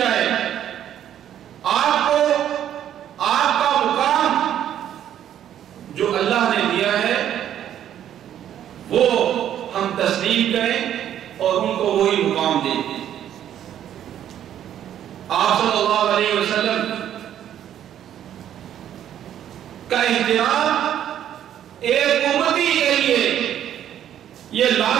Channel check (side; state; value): left; quieter; 10.6 dB